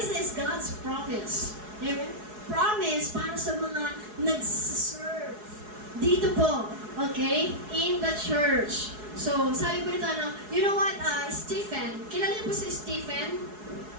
is God's promise. Amen? Promise para sa mga nag-serve dito po, okay? In the church. So, sabi ko nito, you know what, Stephen, kilala niyo po si Stephen?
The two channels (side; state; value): left; late; 4.7 ms